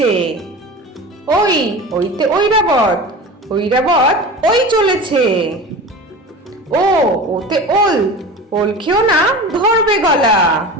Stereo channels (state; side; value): normal; both; correlation 0.33